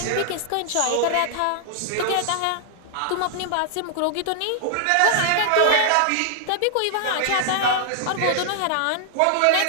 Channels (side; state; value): both; different; correlation 0.00